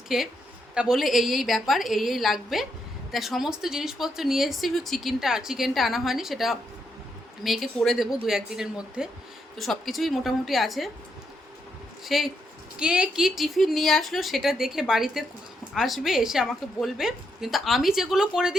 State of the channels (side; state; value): both; normal; correlation 0.79